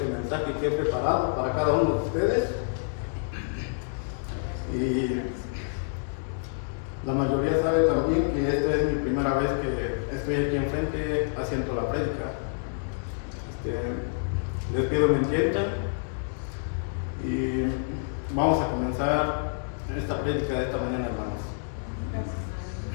mensaje que he preparado para cada uno de ustedes. Y la mayoría sabe también que esta es mi primera vez que estoy aquí enfrente haciendo la prédica. Les pido me entiendan y vamos a comenzar esta prédica de esta manera, hermanos.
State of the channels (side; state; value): right; silent; digital silence